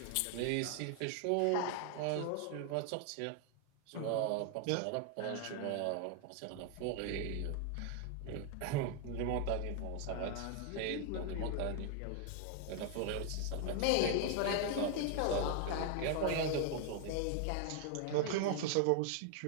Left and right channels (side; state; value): both; different; correlation 0.00